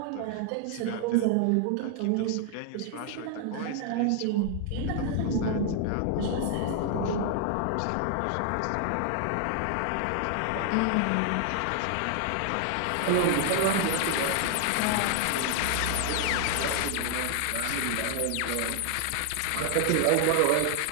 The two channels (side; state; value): both; different; correlation 0.00